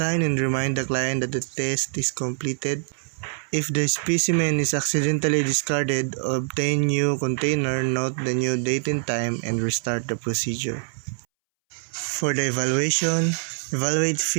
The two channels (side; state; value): left; silent; 62 dB below the other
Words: and remind the client that the test is completed. If the specimen is accidentally discarded, obtain new container, note the new date and time, and restart the procedure. For the evaluation, evaluate